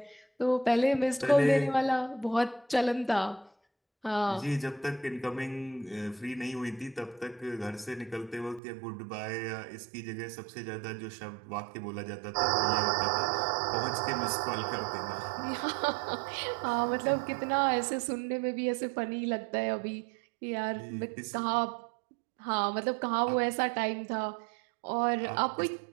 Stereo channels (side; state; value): left; drops out; at 8.6 s